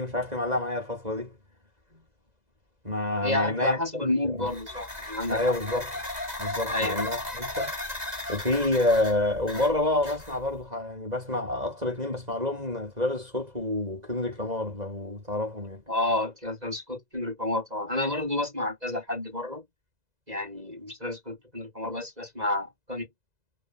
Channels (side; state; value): left; late; 2.0 ms